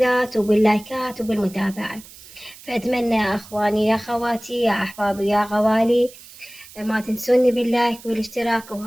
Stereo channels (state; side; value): noise; right; hiss, 20 dB below the sound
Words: وباللايكات وبالمتابعة. فأتمنى يا أخواني يا خواتي يا أحبابي يا غوالي ما تنسوني باللايك والاشتراك.